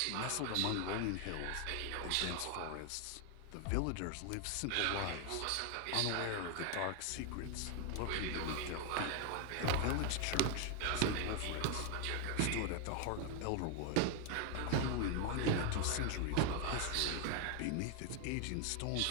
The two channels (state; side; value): different; both; correlation 0.01